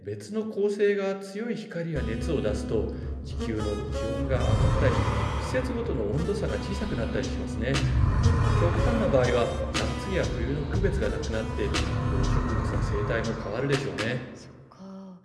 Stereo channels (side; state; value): both; identical; correlation 1.00